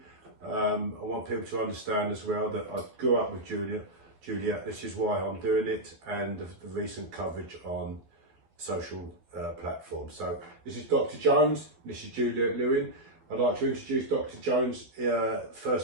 I want people to understand as well that I grew up with Juliette, this is why I'm doing it, and the recent coverage on social platforms. So this is Dr. Jones, this is Juliette Lewin. I'd like to introduce Dr. Jones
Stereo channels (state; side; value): late; left; 12 ms